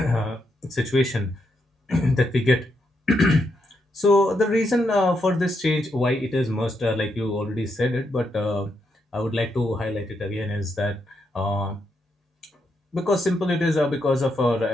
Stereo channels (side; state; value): both; normal; correlation 0.80